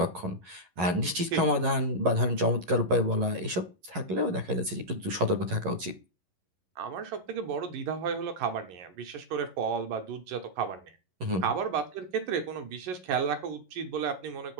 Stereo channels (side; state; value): left; late; 11 ms